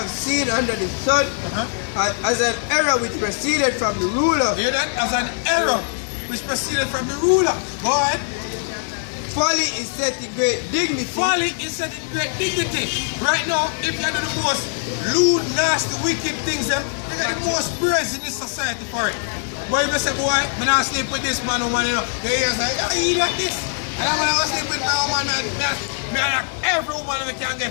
seen under the sun, as an error which proceeded from the ruler. Hear that? As an error which proceeded from the ruler. Go ahead. Folly is set in great dignity. Folly is set in great dignity. Right now, if you do the most lewd, nasty, wicked things, they get the most praise in this society for it. But if you say, boy, I'm not sleep with this man, woman, you know, the ears like, oh, he like this. And I'm going to sleep with my woman, man, every woman we can get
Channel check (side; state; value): right; silent; 65 dB below the other